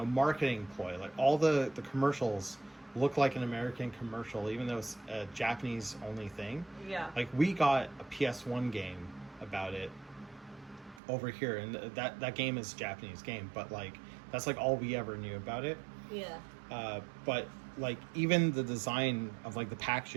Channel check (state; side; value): drops out; left; at 11.0 s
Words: ploy. Like all the commercials look like an American commercial, even though it's a Japanese only thing. Yeah. Like we got a PS1 game about it over here, and that game is a Japanese game, but like that's like all we ever knew about it. Yeah. But like even the design of like the